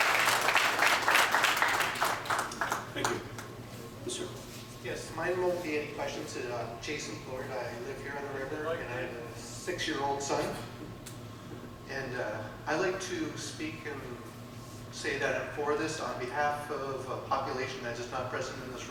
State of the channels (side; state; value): both; identical; correlation 1.00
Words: Thank you. Yes, sir. Yes, mine won't be any questions. Jason Florida. I live here on the river, and I have a 6-year-old son. And I like to speak and say that I'm for this on behalf of a population that is not present in this